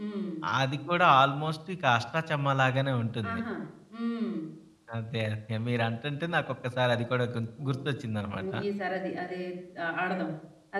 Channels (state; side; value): identical; both; correlation 1.00